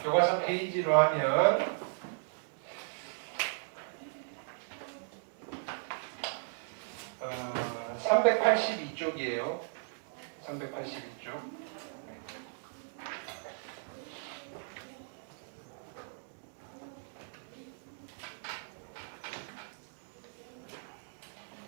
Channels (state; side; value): silent; left; digital silence